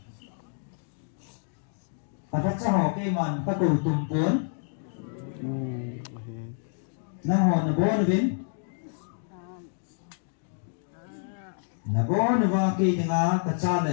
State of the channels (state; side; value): silent; right; digital silence